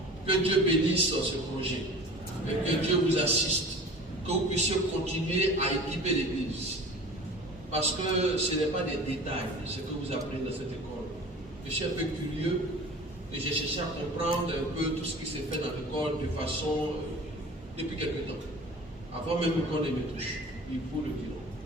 Que Dieu bénisse ce projet. Et que Dieu vous assiste. Que vous puissiez continuer à équiper l'Église. Parce que ce n'est pas des détails, ce que vous apprenez dans cette école. Je suis un peu curieux et j'ai cherché à comprendre un peu tout ce qui s'est fait dans l'école de façon depuis quelque temps. Avant même qu'on ne me touche, il faut le dire.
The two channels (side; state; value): both; normal; correlation 0.40